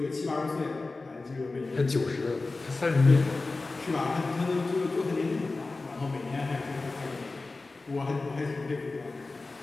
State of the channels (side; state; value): right; quieter; 3.5 dB